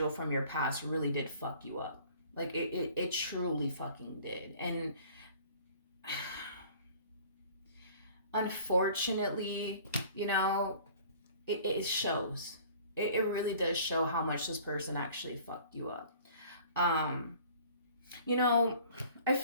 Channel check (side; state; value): both; inverted; correlation -0.50